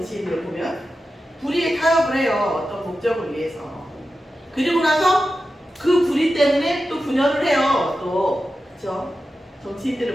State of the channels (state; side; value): normal; both; correlation 0.92